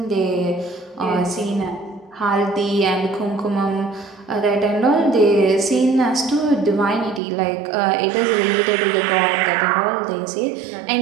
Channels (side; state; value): left; drops out; at 7.2 s